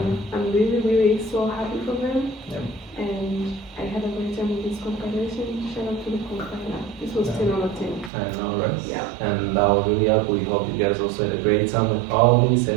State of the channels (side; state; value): left; drops out; at 8.1 s